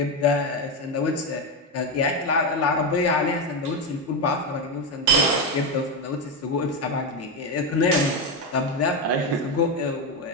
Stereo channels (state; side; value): normal; both; correlation 0.10